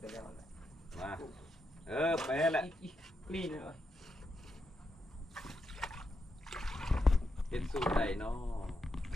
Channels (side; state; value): both; normal; correlation 0.84